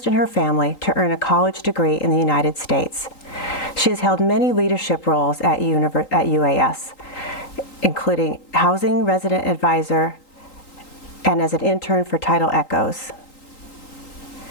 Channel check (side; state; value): right; late; 3.8 ms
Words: in her family to earn a college degree in the United States. She has held many leadership roles at UAS, including Housing Resident Advisor and as an intern for Tidal Echoes.